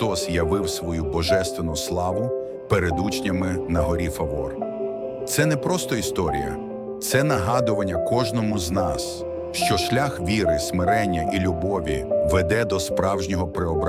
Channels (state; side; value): identical; both; correlation 1.00